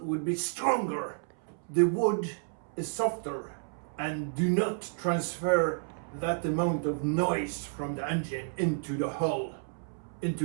would be stronger. The wood is softer and do not transfer that amount of noise from the engine into the hull,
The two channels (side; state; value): left; silent; 57 dB below the other